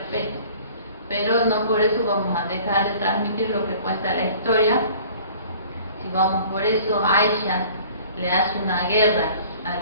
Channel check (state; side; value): inverted; both; correlation -0.49